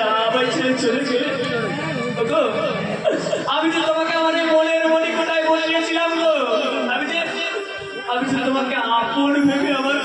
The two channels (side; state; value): both; identical; correlation 1.00